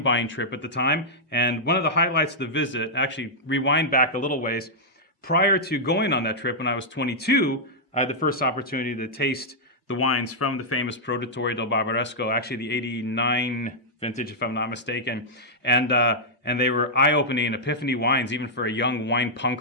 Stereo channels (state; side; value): normal; both; correlation -0.07